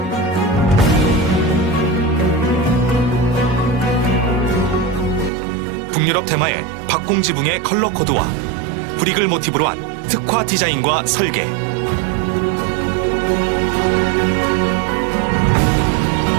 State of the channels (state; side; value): drops out; left; at 5.3 s